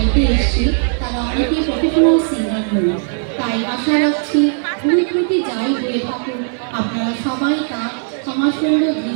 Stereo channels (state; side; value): silent; left; 66 dB below the other